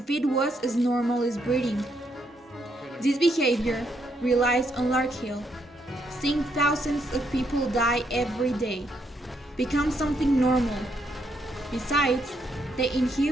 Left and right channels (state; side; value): normal; both; correlation 0.76